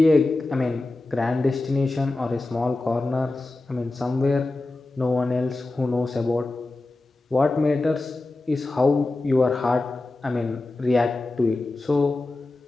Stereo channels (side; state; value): right; quieter; 3.0 dB